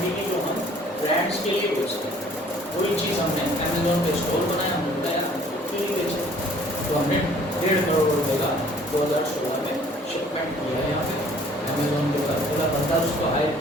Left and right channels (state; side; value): normal; both; correlation 0.55